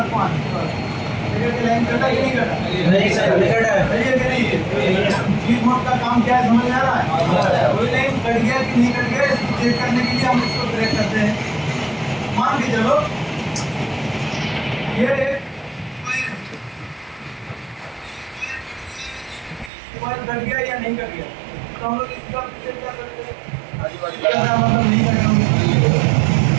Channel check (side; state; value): left; drops out; at 19.7 s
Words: 5, देखिए कि लाइन कटा कि नहीं कटा। नहीं सर, नहीं कटा है। सही है कि नहीं है? डीप मोड का काम क्या है समझ में आ रहा है? कोई लाइन कट गया कि नहीं कट गया इसको चेक करने के लिए हम इसको ब्रेक करते हैं। मान के चलो ये मोबाइल कट गया या नहीं कट गया, तो हम लोग इसका चेक कर सकते हैं। मतलब नहीं कट गया